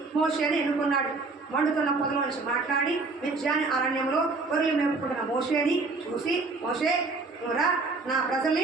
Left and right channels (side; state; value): left; quieter; 3.7 dB